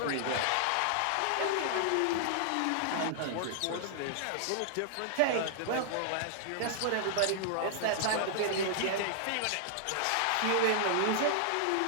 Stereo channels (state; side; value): different; both; correlation -0.01